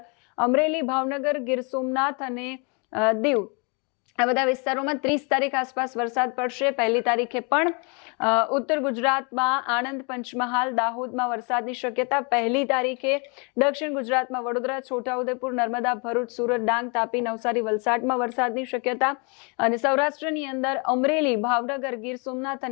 અમરેલી, ભાવનગર, ગીર સોમનાથ અને દીવ આ બધા વિસ્તારોમાં 30 તારીખ આસપાસ વરસાદ પડશે. 1લી તારીખે પણ ઉત્તર ગુજરાતમાં આણંદ, પંચમહાલ, દાહોદમાં વરસાદની શક્યતા. 1લી તારીખે દક્ષિણ ગુજરાતમાં વડોદરા, છોટાઉદેપુર, નર્મદા, ભરૂચ, સુરત, ડાંગ, તાપી, નવસારી, વલસાડમાં વરસાદની શક્યતા. અને સૌરાષ્ટ્રની અંદર અમરેલી, ભાવનગર, ગીર સોમનાથ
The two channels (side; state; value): right; quieter; 33.7 dB